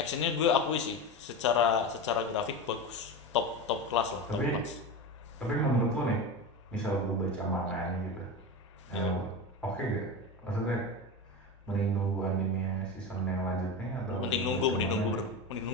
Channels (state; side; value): normal; both; correlation 0.23